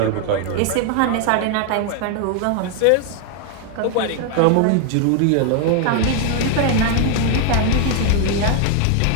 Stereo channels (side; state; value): both; different; correlation 0.00